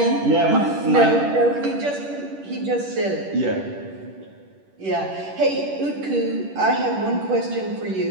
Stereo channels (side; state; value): left; late; 10 ms